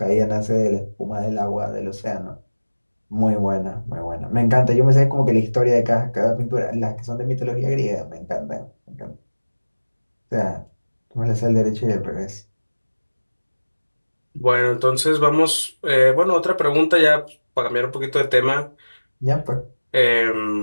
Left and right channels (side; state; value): both; inverted; correlation -1.00